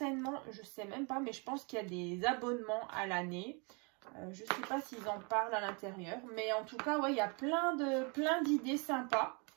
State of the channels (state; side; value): quieter; left; 33.0 dB